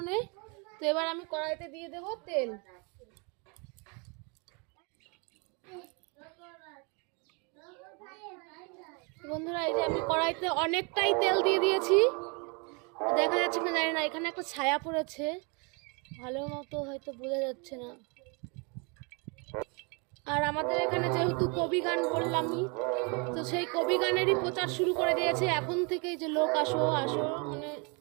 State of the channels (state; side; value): quieter; left; 32.9 dB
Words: তো এবার আমি কড়াইতে দিয়ে দেব তেল। বন্ধুরা এই যে আমি কড়াইতে অনেকটাই তেল দিয়ে দিয়েছি, দেখা যাচ্ছে না জানি না, এখানে একটা ছায়া পড়েছে, ভালো মতো হয়তো বোঝা যাচ্ছে না। আর আমাদের এখানে যেহেতু কবি গান বললামই, তো সেই কবি গানেরই প্রচার শুরু করে দিয়েছে এখন থেকেই, যে লোক আসো আসো মানে